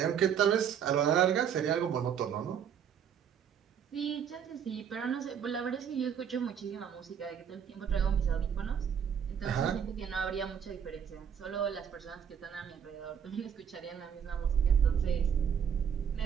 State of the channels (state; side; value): quieter; left; 8.0 dB